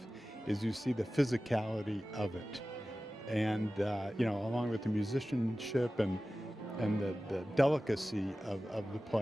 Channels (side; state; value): both; normal; correlation 0.96